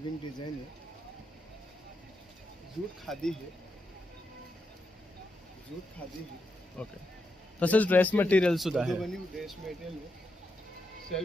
डिजाइन है. जूट खादी है, जूट खादी है. ओके, तसेच ड्रेस मटेरियल सुद्धा आहे. मधुबनी ड्रेस मटेरियल है, शेल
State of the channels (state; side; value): normal; both; correlation 0.84